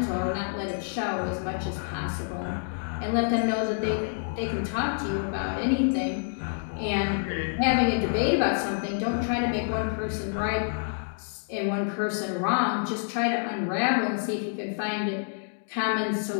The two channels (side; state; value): right; silent; digital silence